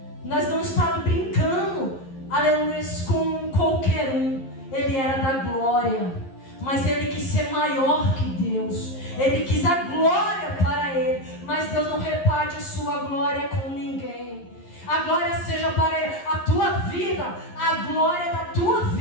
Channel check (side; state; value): right; late; 11 ms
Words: Nós não estávamos brincando, aleluias, com qualquer um. Ele era da glória, mas ele quis ser maior que Deus. Ele quis a glória para ele, mas Deus não reparte a sua glória com ninguém. A glória seja para ele. A tua vida, a glória da tua